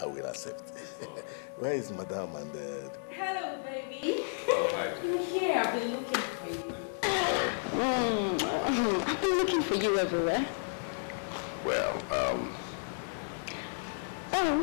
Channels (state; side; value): silent; right; digital silence